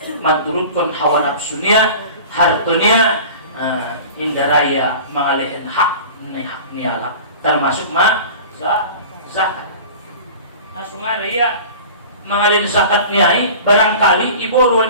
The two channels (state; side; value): inverted; both; correlation -0.39